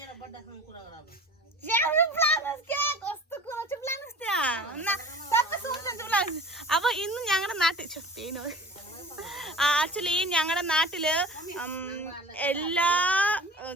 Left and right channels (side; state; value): both; normal; correlation 0.41